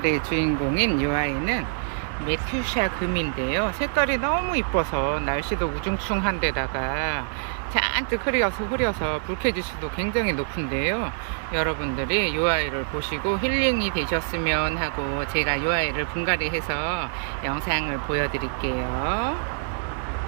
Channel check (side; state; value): left; silent; 61 dB below the other